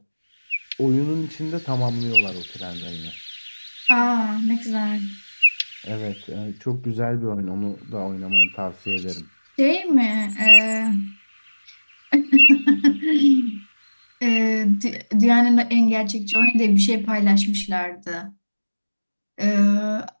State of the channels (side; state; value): both; inverted; correlation -1.00